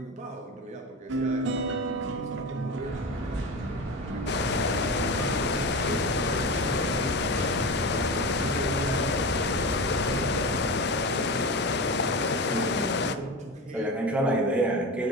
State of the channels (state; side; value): normal; both; correlation 0.25